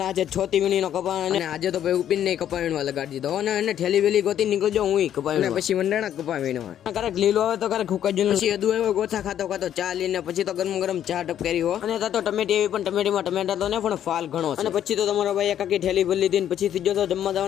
ને આજે 6 વીણીનો કપા, અને આજે તો ભાઈ ઉપીને નહીં કપાવીણવા લગાડી દીધો, અને એને ઠેલી વેલી ગોતી નીકળી ગયો હું કપાવીને, પછી મંડાણા કપાવીણવા. ક્યારેક લીલો આવે તો ક્યારેક હુકા જ, પછી અદુ આવ્યો ગોથા ખાતો ચા લઈને પછી તો ગરમ ગરમ ચા ટપકારી હો. અને તો ટમેટી એવી, પણ ટમેટીમાં ટમેટા તો ને પણ ફાલ ઘણો. અને પછી તો તમારા ભાઈ એકાકી ઠેલી ભરી લીધી, પછી સીધો તો જમવા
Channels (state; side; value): quieter; right; 10.4 dB